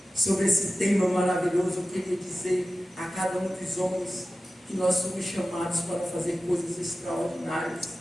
sobre esse tema maravilhoso, eu queria dizer a cada um dos homens que nós somos chamados para fazer coisas extraordinárias,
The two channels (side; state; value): both; normal; correlation 0.94